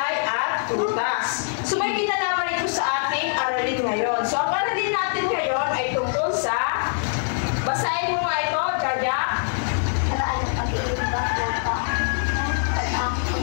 at prutas. So may kinalaman ito sa ating aralin ngayon. So ang aralin natin ngayon ay tungkol sa, basahin mo nga ito, Jaja.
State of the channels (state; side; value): silent; right; 63 dB below the other